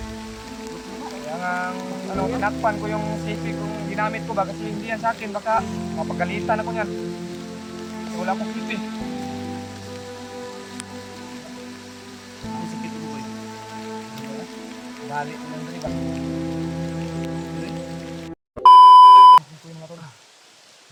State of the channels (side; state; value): both; identical; correlation 1.00